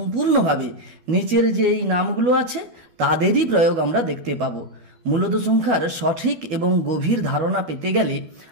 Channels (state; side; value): late; left; 12 ms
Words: নিচের যে এই নামগুলো আছে তাদেরই প্রয়োগ আমরা দেখতে পাবো। মূলদ সংখ্যার সঠিক এবং গভীর ধারণা পেতে গেলে